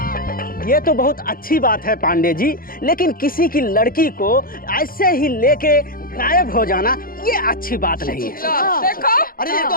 ये तो बहुत अच्छी बात है पांडे जी, लेकिन किसी की लड़की को ऐसे ही लेके गायब हो जाना ये अच्छी बात नहीं है। देखो, अरे ये तो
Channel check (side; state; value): right; late; 0.42 ms